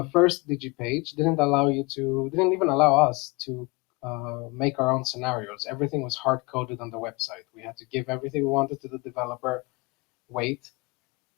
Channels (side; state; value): right; quieter; 25.7 dB